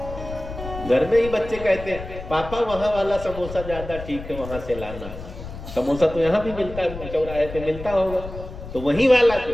घर में ही बच्चे कहते हैं पापा वहां वाला समोसा ज्यादा ठीक है, वहां से लाना। समोसा तो यहाँ भी मिलता है, चौराहे पे मिलता होगा, तो वही वाला तो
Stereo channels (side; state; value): left; noise; rumble, 11 dB below the sound